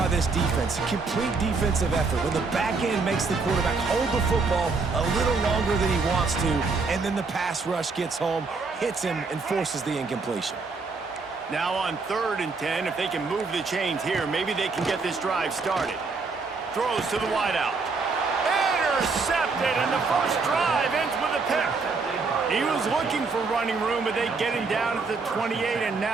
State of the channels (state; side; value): quieter; left; 4.3 dB